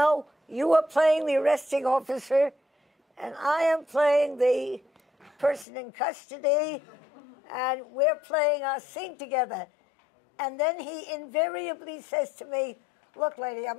you are playing the arresting officer, and I am playing the person in custody, and we're playing our scene together. And then he invariably says to me, look, lady,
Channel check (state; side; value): drops out; right; at 5.7 s